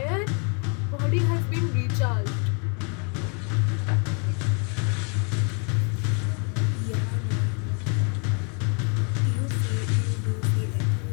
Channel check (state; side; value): quieter; right; 37.4 dB